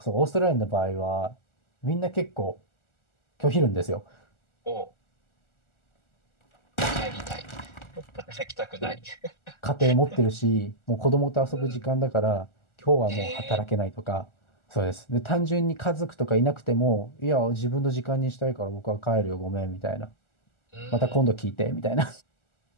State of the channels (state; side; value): late; right; 1.4 ms